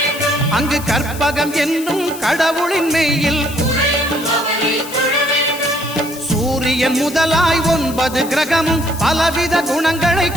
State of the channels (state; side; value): noise; left; hiss, 13 dB below the sound